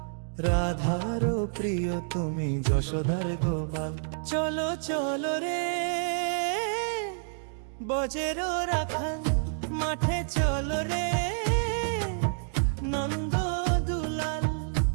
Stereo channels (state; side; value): silent; left; digital silence